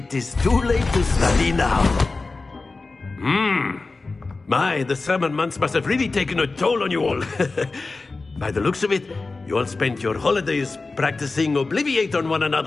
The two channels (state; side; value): quieter; right; 3.7 dB